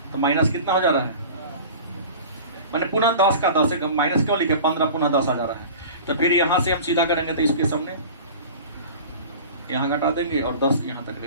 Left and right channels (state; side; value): inverted; both; correlation -0.38